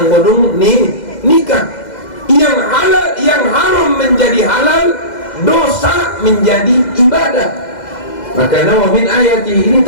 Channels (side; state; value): right; late; 2.0 ms